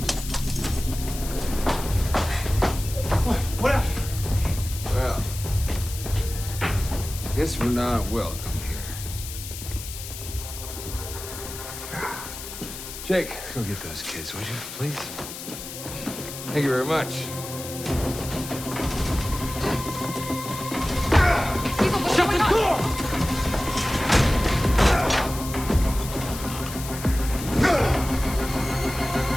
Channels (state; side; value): noise; left; hiss, 10 dB below the sound